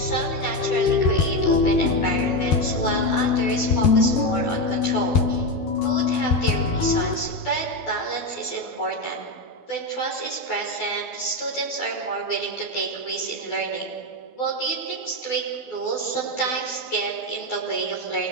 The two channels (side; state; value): right; late; 12 ms